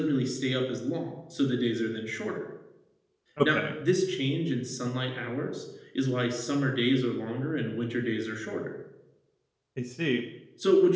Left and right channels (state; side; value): identical; both; correlation 1.00